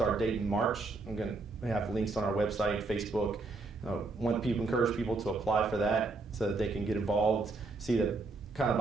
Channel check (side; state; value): left; quieter; 3.5 dB